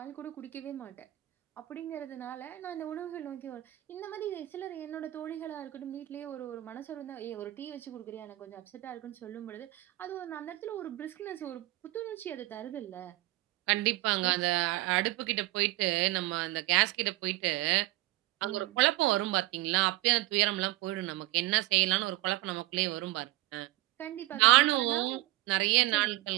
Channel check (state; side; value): quieter; left; 18.4 dB